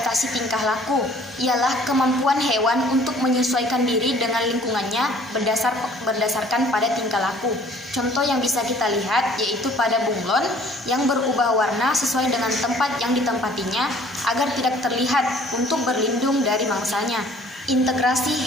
tingkah laku, ialah kemampuan hewan untuk menyesuaikan diri dengan lingkungannya berdasarkan pada tingkah laku. Contoh yang bisa kita lihat yaitu pada bunglon yang berubah warna sesuai dengan tempat yang ditempatinya agar tidak terlihat untuk berlindung dari mangsanya. Integrasi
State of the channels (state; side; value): normal; both; correlation 0.55